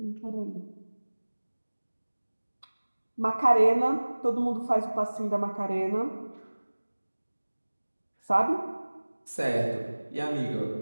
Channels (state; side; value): inverted; both; correlation -1.00